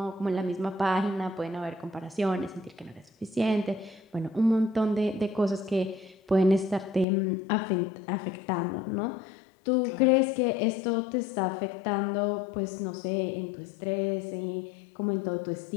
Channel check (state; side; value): drops out; right; at 7.1 s